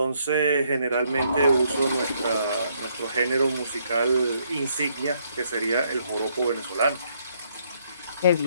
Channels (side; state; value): both; inverted; correlation -0.71